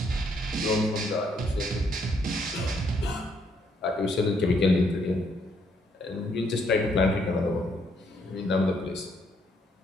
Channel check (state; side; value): normal; both; correlation 0.72